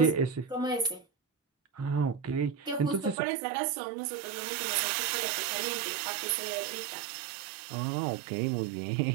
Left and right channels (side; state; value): left; drops out; at 3.2 s